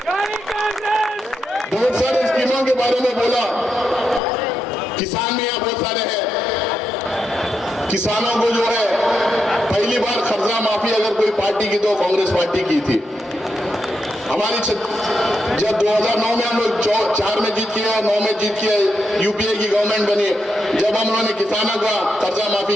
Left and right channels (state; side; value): normal; both; correlation 0.83